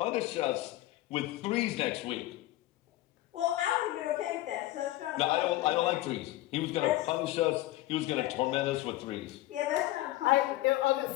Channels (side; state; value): right; quieter; 16.5 dB